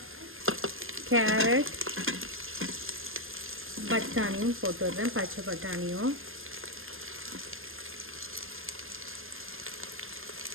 கேரட், பட்டாணியும் போட்டுடுறேன். பச்சை பட்டாணியும்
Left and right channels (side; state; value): left; late; 0.60 ms